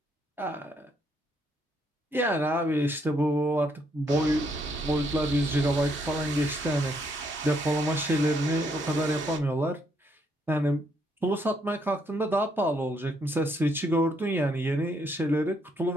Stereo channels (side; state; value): both; normal; correlation 0.73